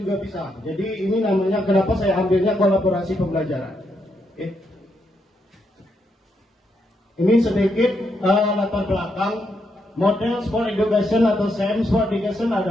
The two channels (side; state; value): both; normal; correlation 0.79